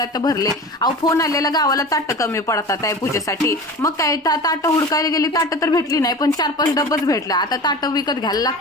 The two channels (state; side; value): normal; both; correlation 0.34